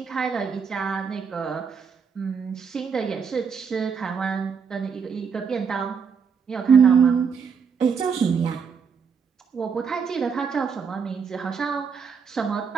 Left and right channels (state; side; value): quieter; left; 6.2 dB